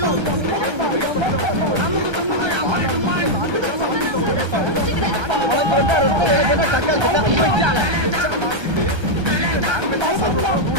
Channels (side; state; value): left; late; 1.3 ms